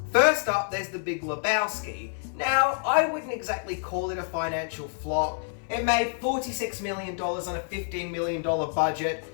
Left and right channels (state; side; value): silent; right; 60 dB below the other